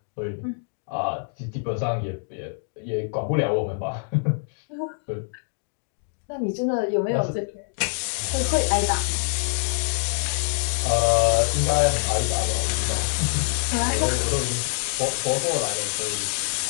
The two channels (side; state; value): right; silent; digital silence